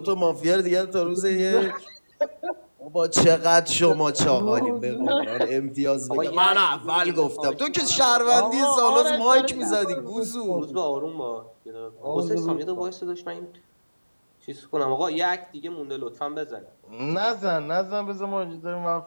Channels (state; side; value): inverted; both; correlation -1.00